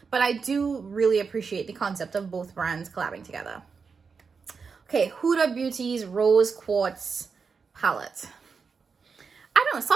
but I do really appreciate the concept of both brands collabing together. Okay, Huda Beauty's Rose Quartz palette. I don't know,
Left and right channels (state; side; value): quieter; left; 5.3 dB